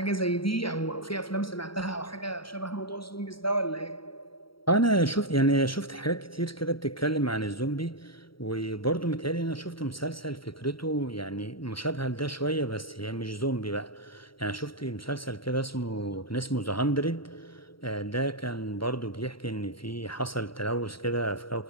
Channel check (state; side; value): late; right; 0.74 ms